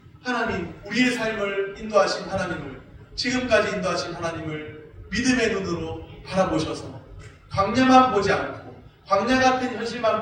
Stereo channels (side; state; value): both; identical; correlation 1.00